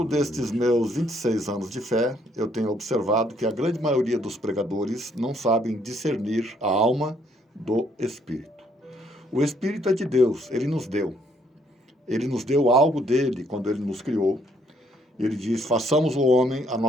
destes meus 26 anos de fé, eu tenho observado que a grande maioria dos pregadores não sabem discernir a alma do Espírito. O Espírito é de Deus, Ele nos deu. Ele nos deu algo dele quando Ele nos criou. Ele diz, façamos o homem à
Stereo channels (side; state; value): both; normal; correlation 0.68